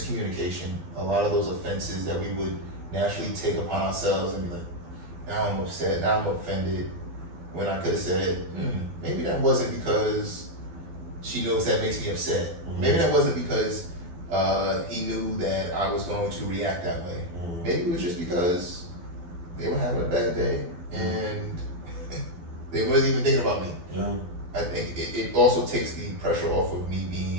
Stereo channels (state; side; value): late; left; 12 ms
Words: a lot of those offenses that we would naturally take upon ourselves and be like, now I'm upset, now I'm offended, when I could have said, maybe that wasn't because she knows that makes me upset. Maybe that wasn't because he knew that I was going to react that way. Maybe it was just because they were having a bad day and they wasn't even thinking about me. Yeah. I think it also takes the pressure off of me